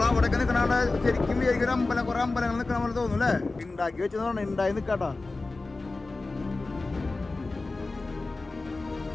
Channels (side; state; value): right; quieter; 3.4 dB